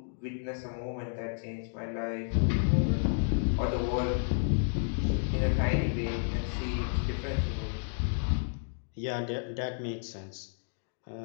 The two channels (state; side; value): silent; right; digital silence